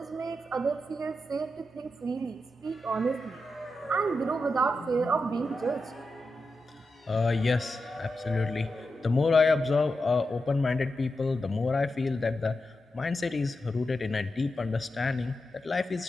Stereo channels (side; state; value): both; normal; correlation 0.89